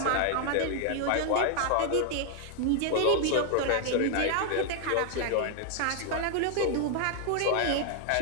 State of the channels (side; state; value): both; different; correlation 0.00